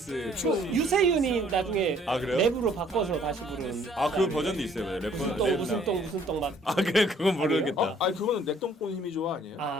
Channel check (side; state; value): both; normal; correlation 0.60